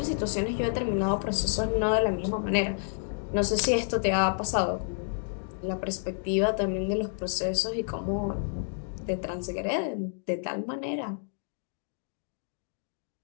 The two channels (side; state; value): right; silent; digital silence